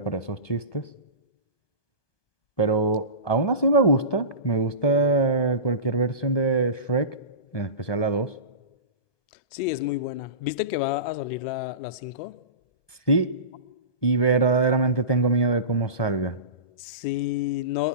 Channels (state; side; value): late; right; 1.2 ms